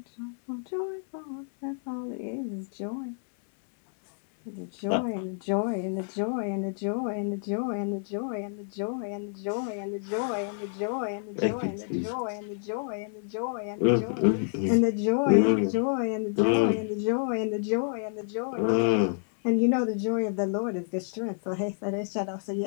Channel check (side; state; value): right; silent; 59 dB below the other